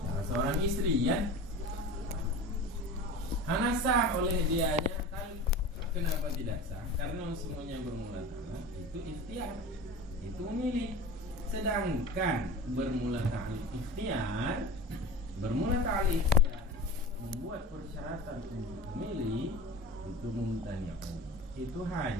seorang istri ya. Hana sah oleh dianya. Kenapa tidak sah? Karena semuanya bermula talak itu ikhtiar, itu memilih. Sedangkan bermula ta'liq ikhtiar membuat persyaratan untuk memilih itu mumtani'un, itu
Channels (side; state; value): both; normal; correlation 0.33